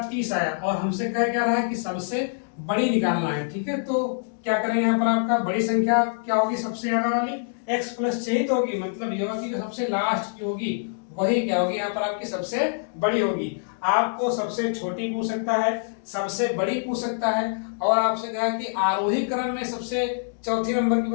30 आया, और हमसे कह क्या रहा है कि सबसे बड़ी निकालना है। ठीक है, तो क्या करेंगे यहाँ पर आपका बड़ी संख्या क्या होगी, सबसे ज्यादा वाली x प्लस 6 तो होगी, मतलब ये होगी जो सबसे लास्ट की होगी वही क्या होगी यहाँ पर आपकी सबसे बड़ी होगी। आपको सबसे छोटी पूछ सकता है, सबसे बड़ी पूछ सकता है, और आपसे कहा कि आरोही क्रम में सबसे चौथी नंबर की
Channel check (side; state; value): right; silent; digital silence